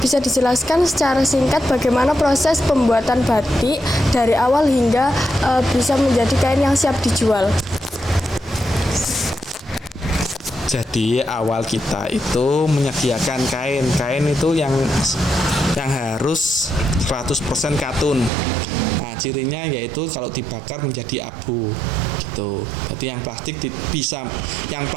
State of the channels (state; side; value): drops out; left; at 18.3 s